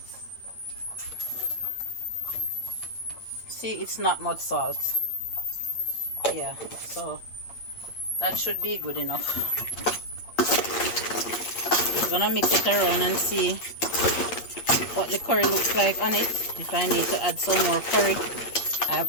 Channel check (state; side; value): late; right; 8.5 ms